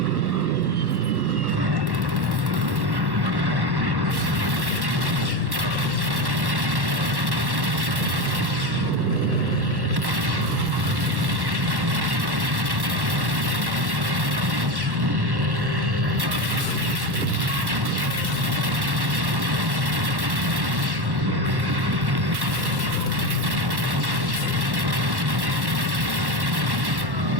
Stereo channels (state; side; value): late; left; 1.1 ms